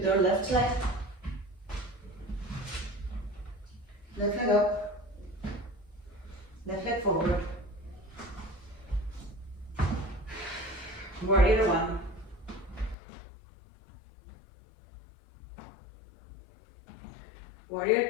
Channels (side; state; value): right; drops out; at 13.0 s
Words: our left leg. Left leg up. Left leg forward. Warrior one. Warrior